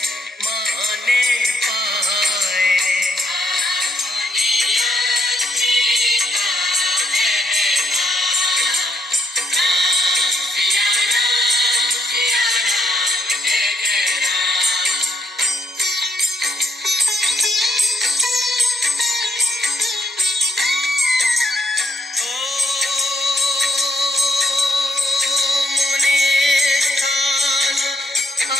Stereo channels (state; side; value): normal; both; correlation 0.75